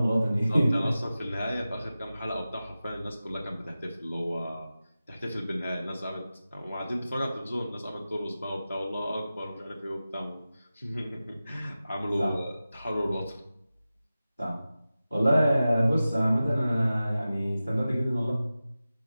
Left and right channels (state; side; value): inverted; both; correlation -0.95